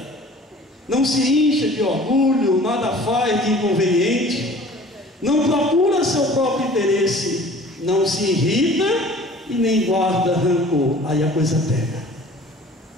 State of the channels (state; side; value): normal; both; correlation 0.47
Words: não se incha de orgulho, nada faz de inconveniente, não procura seu próprio interesse, não se irrita e nem guarda rancor. Aí a coisa pega.